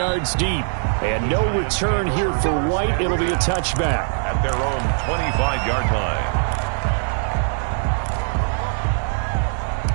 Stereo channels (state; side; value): silent; left; 65 dB below the other